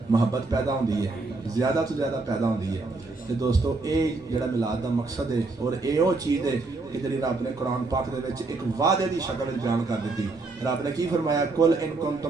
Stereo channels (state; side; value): quieter; left; 3.6 dB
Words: محبت پیدا ہوندی ہے، زیادہ تو زیادہ پیدا ہوندی ہے۔ تے دوستو اے جڑا میلاد دا مقصد ہے اور اے او چیز ہے کہ جڑی رب نے قرآن پاک دے وچ ایک وعدے دی شکل وچ بیان کر دتی۔ رب نے کی فرمایا؟ قل ان